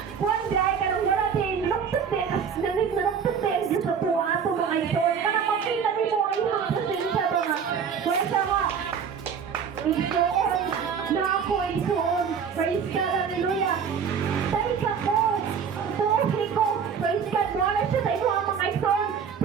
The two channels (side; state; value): left; quieter; 6.8 dB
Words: kuhan dahil ka nang wala din luktot din nanig na luktot din sa tuwa ito mga isog kanang makita din mo ay mga pasensya ba nga kwenta nga isoon na ako isoon praise God hallelujah dahil ka ko tuhi ko praise God wala siya sa imo ang mga isoon